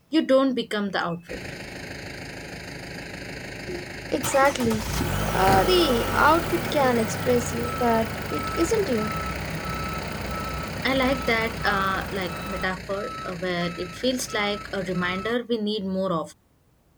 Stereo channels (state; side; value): identical; both; correlation 1.00